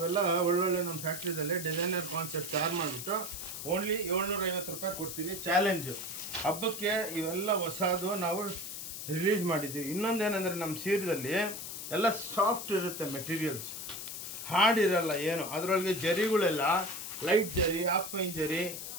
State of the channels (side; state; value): left; noise; hiss, 7 dB below the sound